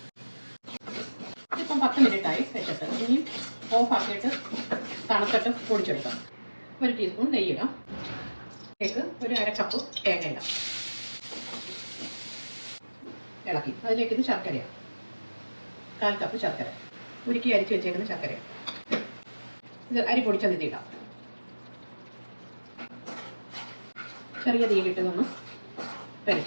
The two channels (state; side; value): inverted; both; correlation -1.00